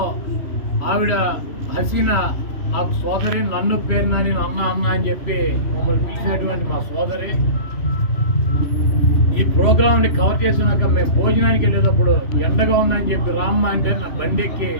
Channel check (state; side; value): late; right; 3.0 ms